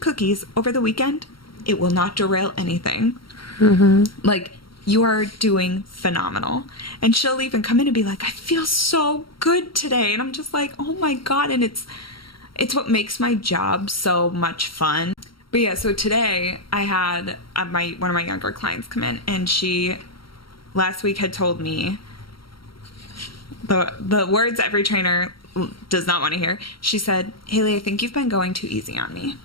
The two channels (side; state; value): right; late; 0.74 ms